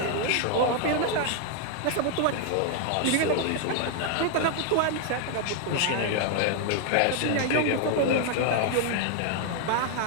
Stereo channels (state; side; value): different; both; correlation 0.00